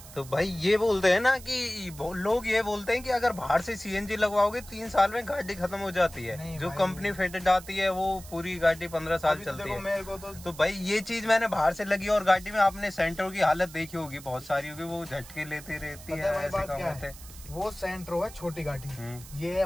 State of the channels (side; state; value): right; noise; hiss, 17 dB below the sound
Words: तो भाई ये बोलते हैं ना कि लोग ये बोलते हैं कि अगर बाहर से सीएनजी लगवाओगे 3 साल में गाड़ी खत्म हो जाती है। जो कंपनी फिटेड आती है वो पूरी गाड़ी 15 साल चलती है। मेरे को तो भाई ये चीज मैंने बाहर से लगी और गाड़ी में आपने सेंटर की हालत देखी होगी, बहुत सारी होगी, वो झटके लेती रहती है। ऐसे काम होते हैं। वो सेंट्रो है छोटी गाड़ी, ये